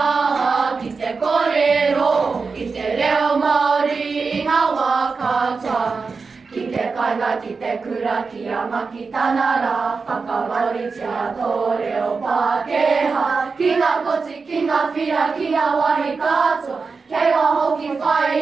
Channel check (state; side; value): quieter; left; 4.7 dB